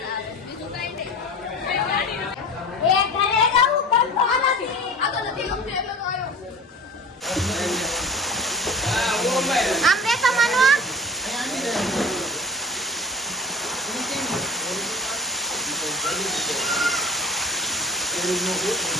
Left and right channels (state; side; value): normal; both; correlation 0.38